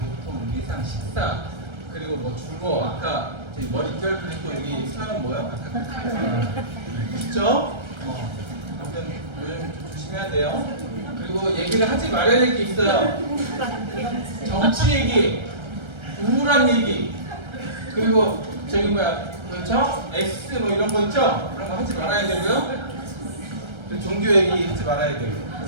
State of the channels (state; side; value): late; left; 1.3 ms